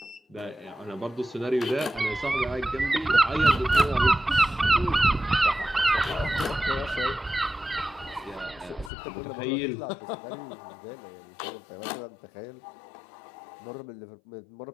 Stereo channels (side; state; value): right; drops out; at 8.9 s